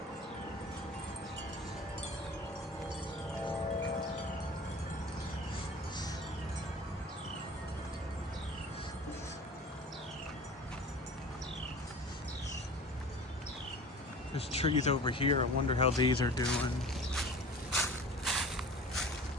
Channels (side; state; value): both; normal; correlation 0.39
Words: There's trees over here. I wonder how these are doing.